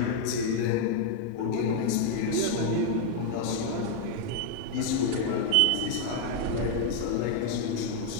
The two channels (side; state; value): both; different; correlation 0.00